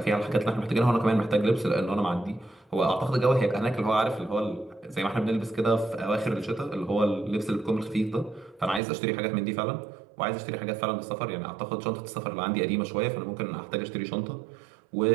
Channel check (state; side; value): drops out; left; at 8.8 s